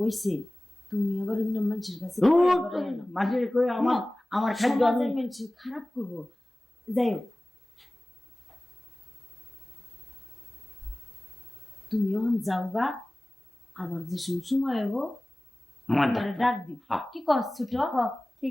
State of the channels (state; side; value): normal; both; correlation 0.98